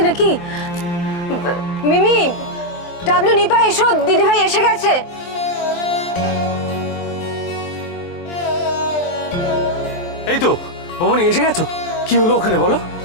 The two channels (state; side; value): late; right; 23 ms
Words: নাকি? মিমি, ডাবলু, নিপা এসো, দিদিভাই এসে গেছে। এই তো বৌমনি এসে গেছো। কি হলো ওখানে বলো?